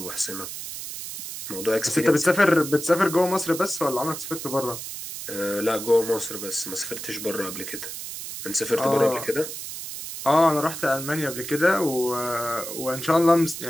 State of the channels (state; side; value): noise; right; hiss, 8 dB below the sound